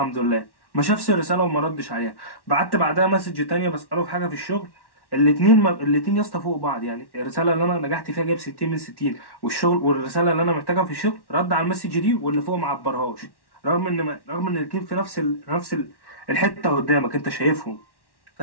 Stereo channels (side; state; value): right; late; 1.1 ms